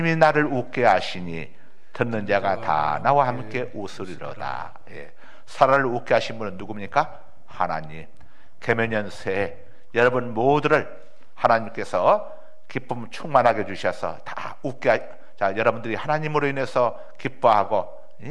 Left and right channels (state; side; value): identical; both; correlation 1.00